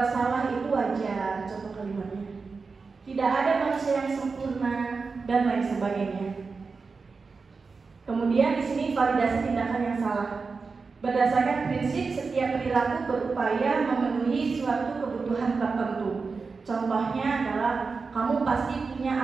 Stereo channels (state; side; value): quieter; left; 4.6 dB